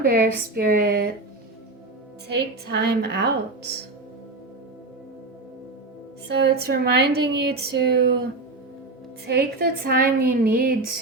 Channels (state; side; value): quieter; left; 3.1 dB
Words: bear spirit. Take time out. So it's reminding you to take the time you need